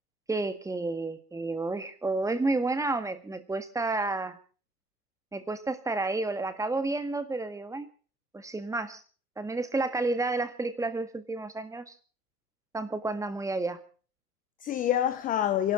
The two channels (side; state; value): both; normal; correlation 0.55